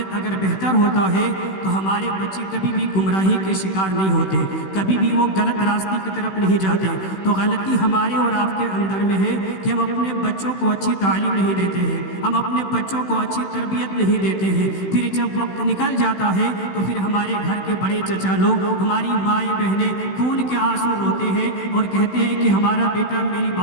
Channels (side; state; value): right; late; 16 ms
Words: اگر بہتر ہوتا ہے تو ہمارے بچے کبھی بھی گمراہی کے شکار نہیں ہوتے، کبھی بھی وہ غلط راستے کی طرف نہیں جاتے. تو غلطی ہمارے اور آپ کے اندر میں ہے کہ ہم اپنے بچوں کو اچھی تعلیم نہیں دیتے ہیں، ہم اپنے بچوں کو اچھی تربیت نہیں دیتے ہیں. پھر جب وقت نکل جاتا ہے تو پھر ہمارے گھر کے بڑے چچا لوگ، ہماری مائیں بہنیں خون کے آنسو روتے ہیں اور کہتے ہیں کہ ہمارا بیٹا میری